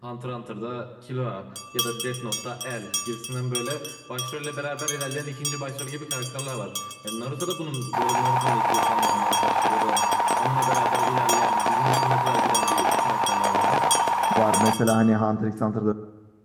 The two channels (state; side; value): identical; both; correlation 1.00